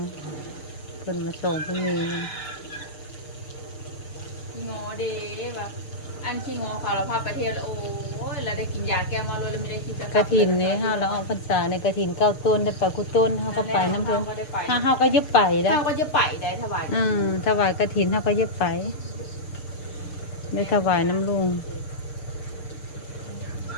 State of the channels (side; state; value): right; late; 6.6 ms